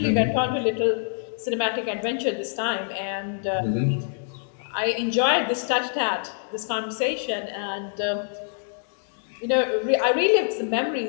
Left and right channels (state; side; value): silent; right; digital silence